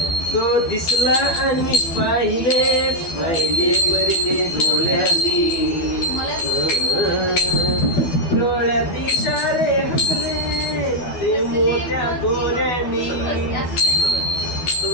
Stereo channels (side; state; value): right; late; 12 ms